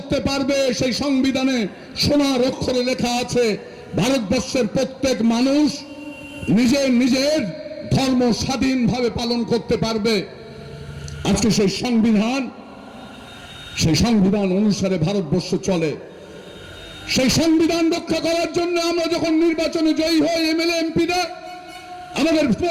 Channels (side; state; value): both; identical; correlation 1.00